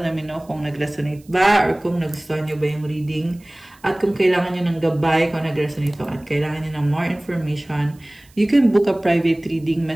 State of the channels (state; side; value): noise; right; hiss, 29 dB below the sound